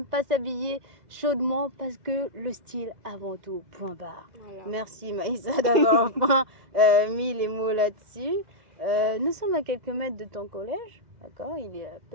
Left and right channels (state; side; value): late; left; 2.0 ms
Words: pas s'habiller chaudement parce que le style avant tout, point barre. Voilà. Merci Maïssa d'avoir enfin mis les mots là-dessus. Nous sommes à quelques mètres de ton collège, d'accord? Il est à